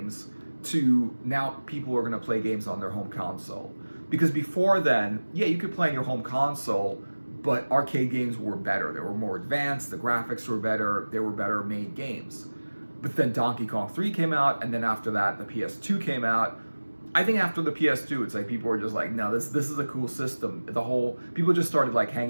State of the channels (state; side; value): inverted; both; correlation -1.00